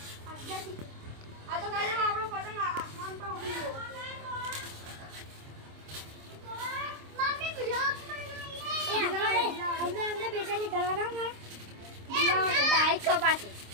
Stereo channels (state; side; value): late; left; 26 ms